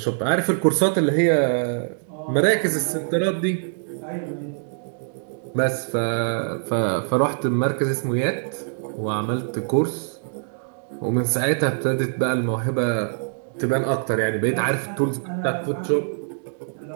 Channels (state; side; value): silent; left; digital silence